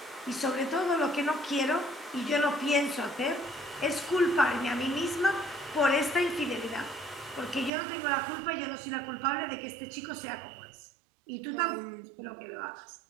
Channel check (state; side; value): drops out; left; at 7.7 s